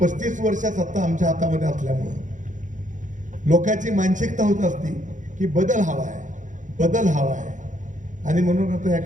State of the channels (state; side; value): late; left; 0.36 ms